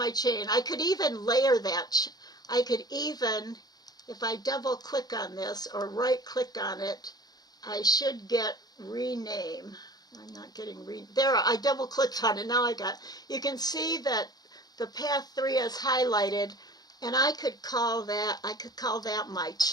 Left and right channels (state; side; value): late; right; 0.19 ms